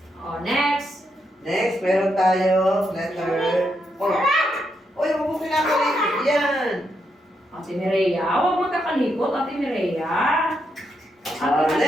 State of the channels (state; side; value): normal; both; correlation 0.81